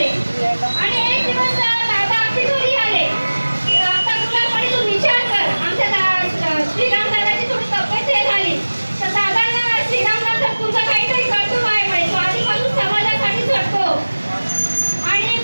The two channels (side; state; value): both; inverted; correlation -1.00